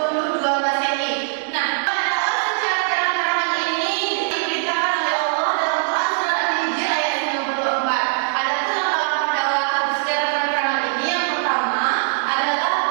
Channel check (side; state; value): left; silent; 65 dB below the other